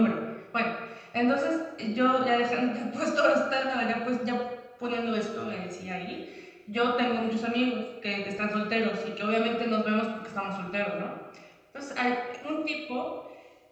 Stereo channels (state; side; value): identical; both; correlation 1.00